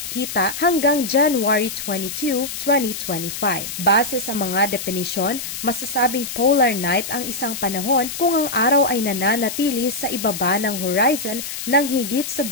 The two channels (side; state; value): left; noise; hiss, 7 dB below the sound